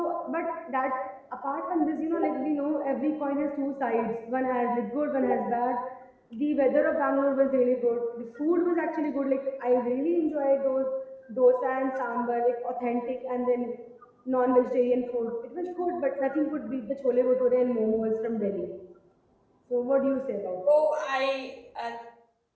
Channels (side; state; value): both; identical; correlation 1.00